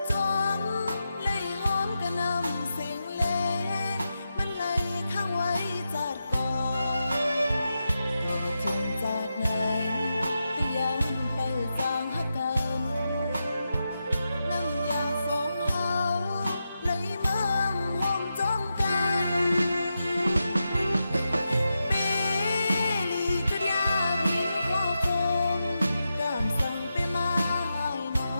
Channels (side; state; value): both; inverted; correlation -0.88